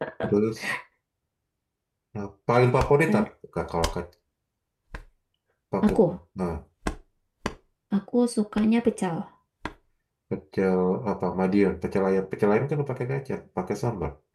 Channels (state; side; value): identical; both; correlation 1.00